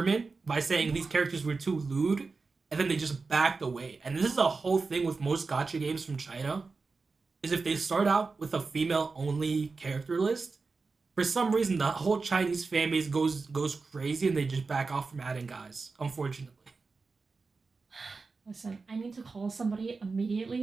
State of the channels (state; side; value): quieter; left; 4.2 dB